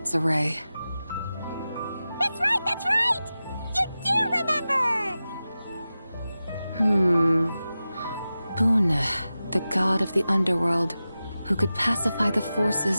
array. That's right, that's right! You do remember! Boone, the god of the underworld, who could pacify the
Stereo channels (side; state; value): both; inverted; correlation -0.94